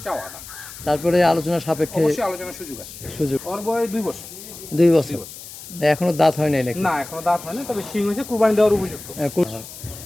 চাওয়া দাম। তারপরে আলোচনা সাপেক্ষে অবশ্যই আলোচনার সুযোগ আছে। সুযোগ। ওর বয়স 2 বছর। 2 বছর এখনো দাঁত হয় নাই নাকি? না এখনো দাঁত হয় না, তবে শিং হয়েছে, কুরবানি দেওয়ার উপযুক্ত।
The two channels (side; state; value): left; noise; hiss, 14 dB below the sound